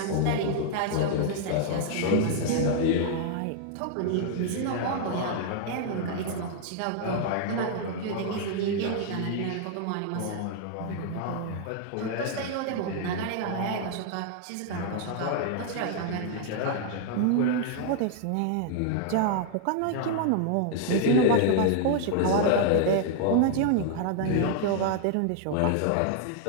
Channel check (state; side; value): different; both; correlation 0.00